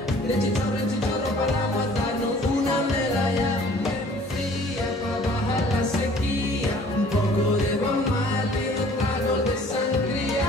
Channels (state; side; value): normal; both; correlation 0.53